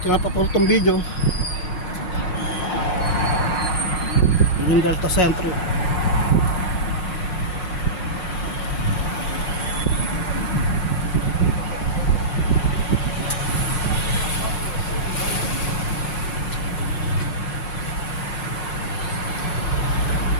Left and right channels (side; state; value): right; late; 5.5 ms